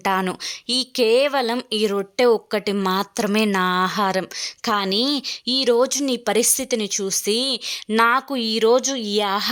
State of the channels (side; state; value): both; identical; correlation 1.00